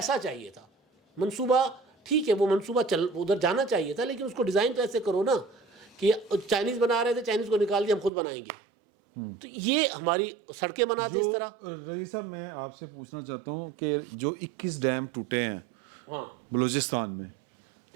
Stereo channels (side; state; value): left; drops out; at 8.1 s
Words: چاہیے تھا, منصوبہ ٹھیک ہے وہ منصوبہ ادھر جانا چاہیے تھا, لیکن اس کو ڈیزائن تو ایسے کرو نا کہ چائنیز بنا رہے تھے, چائنیز کو نکال دیا ہم خود بنائیں گے. تو یہ ہماری سڑکیں بناتے اس طرح. رضی صاحب میں آپ سے پوچھنا چاہتا ہوں کہ جو 21 ڈیم ٹوٹے ہیں بلوچستان میں,